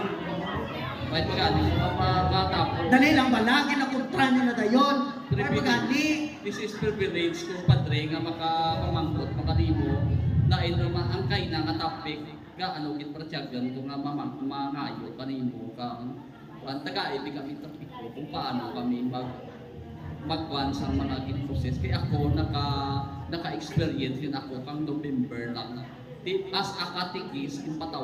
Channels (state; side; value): identical; both; correlation 1.00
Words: may pagani matapos. Dali lang ba? Lagi na kontra nyo na dayon. Ay pagani. This is privilege ko padre nga makapamangkot makalimo na naman ang kay na nga topic nga ano git pratsyagan ko nga mangayo kanimo kang taga-ibig kami topic ko kung paano kami magkuhan sa mga gin-process. Kaya ako naka-experience yun ako kang November lang. As a katikis,